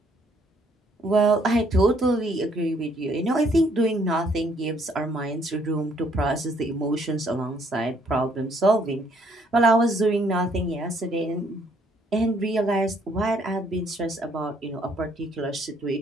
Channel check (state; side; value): normal; both; correlation 0.66